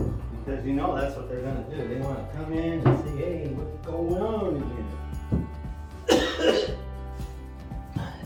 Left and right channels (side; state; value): both; identical; correlation 1.00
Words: Because you know that's what they're going to do. They want to come in and say, hey, what's going on here?